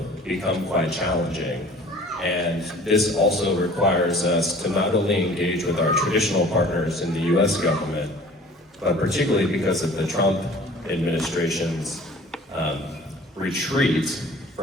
become quite challenging, and this also requires us to not only engage with our traditional partners in the US government, but particularly because of the Trump administration's retreat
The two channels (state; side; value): normal; both; correlation 0.48